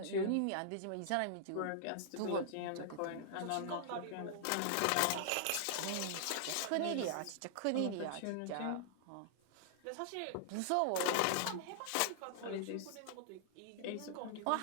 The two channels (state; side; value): different; both; correlation -0.01